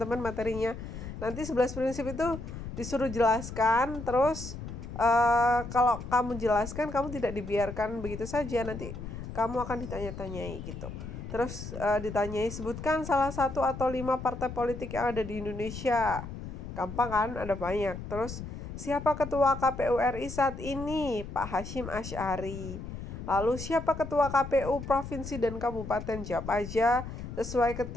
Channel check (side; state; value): left; noise; rumble, 9 dB below the sound